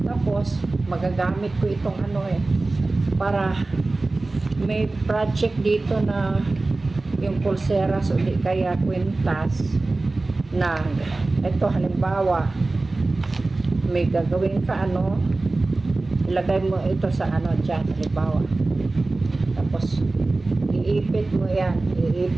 Tapos, magagamit ko itong ano para may project dito na yung pulseras o di kaya kwintas na ito halimbawa may gagawin ka ano, ilagay mo ito sa ano dyan, halimbawa, tapos iipit mo yan,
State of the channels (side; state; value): left; quieter; 3.2 dB